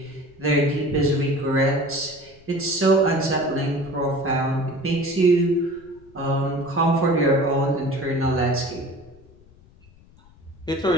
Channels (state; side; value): noise; left; rumble, 26 dB below the sound